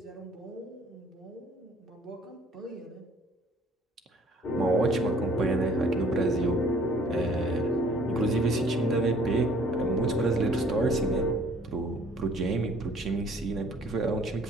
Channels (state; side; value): normal; both; correlation 0.56